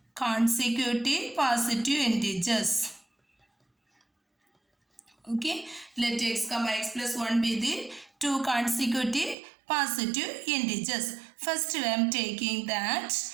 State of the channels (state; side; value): drops out; left; at 9.3 s